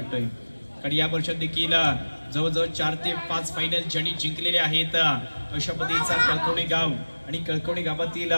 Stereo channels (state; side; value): inverted; both; correlation -1.00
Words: कारण या वर्षात देखील जवळजवळ 4 ते 5 फायनल ज्यांनी जिंकलेले आहेत अशा पद्धतीचा कळकवणे गाव आणि कळकवणे गावातील